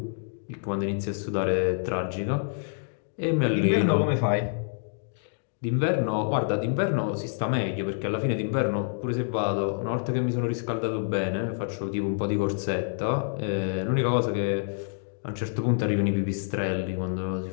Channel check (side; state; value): right; silent; digital silence